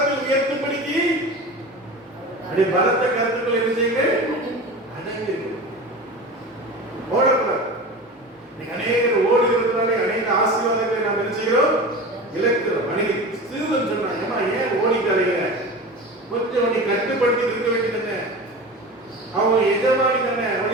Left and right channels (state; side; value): normal; both; correlation 0.32